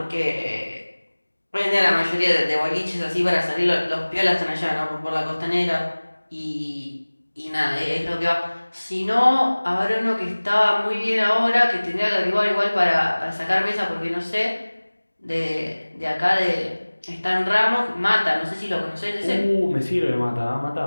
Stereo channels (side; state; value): both; inverted; correlation -1.00